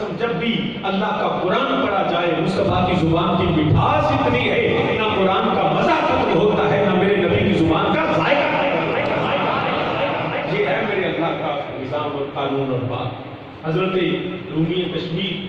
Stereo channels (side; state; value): both; identical; correlation 1.00